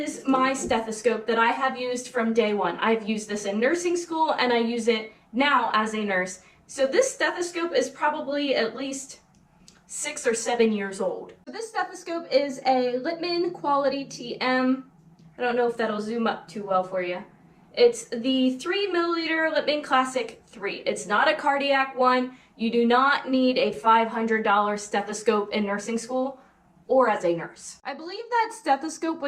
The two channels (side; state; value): both; identical; correlation 1.00